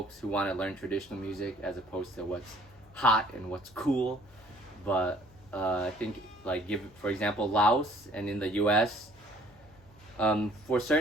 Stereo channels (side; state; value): left; noise; hum, 27 dB below the sound